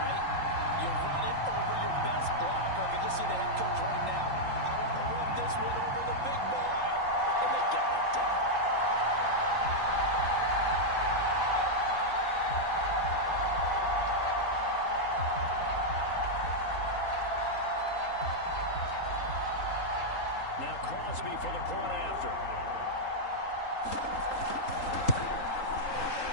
You run it over your best blocker. I can just see the head coach right now. I want to run this one over the big boy. And they got it done.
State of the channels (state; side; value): late; right; 3.8 ms